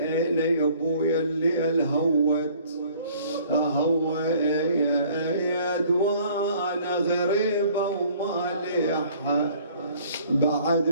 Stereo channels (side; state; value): both; inverted; correlation -0.55